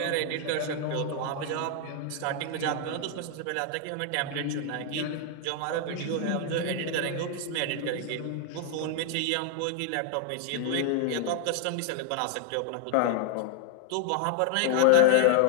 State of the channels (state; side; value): different; both; correlation 0.00